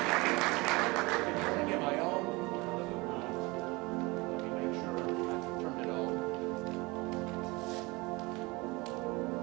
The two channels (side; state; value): left; quieter; 24.3 dB